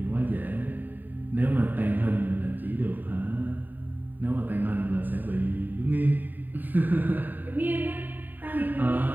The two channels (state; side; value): late; left; 0.089 ms